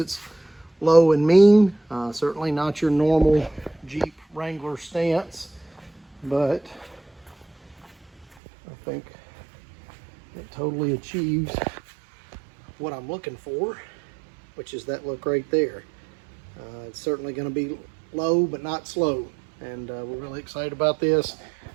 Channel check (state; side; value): drops out; left; at 8.2 s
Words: low and mean. Certainly not your normal Jeep Wrangler stance, but I think it totally achieves what I'm looking for, which is that look right there. It's certainly going to be low but not slow, and we're really excited about this.